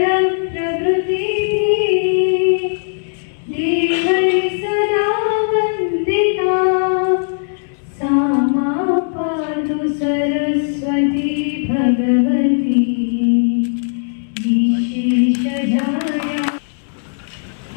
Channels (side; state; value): right; silent; digital silence